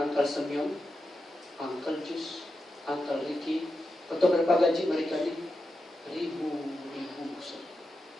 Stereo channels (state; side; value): normal; both; correlation 0.89